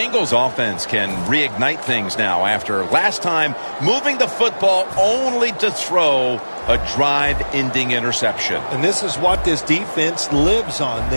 offense can reignite things now after last time moving the football only to throw a drive-ending interception. And this is what this defense lives on.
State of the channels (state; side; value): inverted; both; correlation -1.00